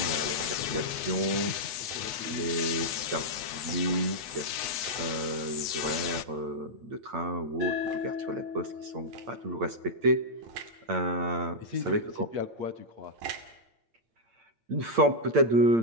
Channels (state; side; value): late; left; 8.2 ms